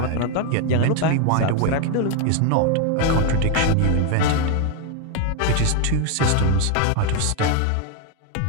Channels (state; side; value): different; both; correlation 0.01